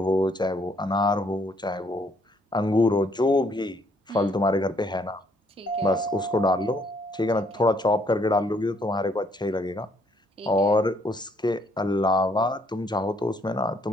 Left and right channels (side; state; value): both; normal; correlation 0.67